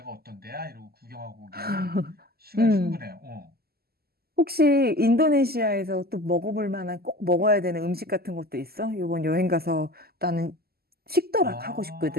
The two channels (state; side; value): late; left; 0.45 ms